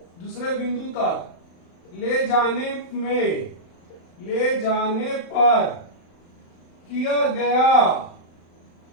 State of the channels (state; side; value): late; right; 35 ms